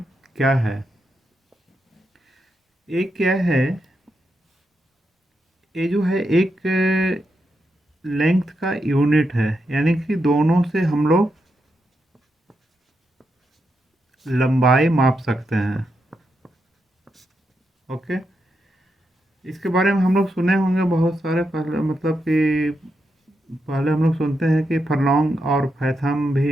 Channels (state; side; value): normal; both; correlation 0.84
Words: क्या है। ये क्या है? ये जो है एक लेंथ का यूनिट है, यानी कि दोनों से हम लोग लंबाई माप सकते हैं। ओके, इसके बारे में हम लोग सुने होंगे बहुत सारे। पहले मतलब कि पहले हम लोग सुनते हैं कि फरलोंग और फैथम भी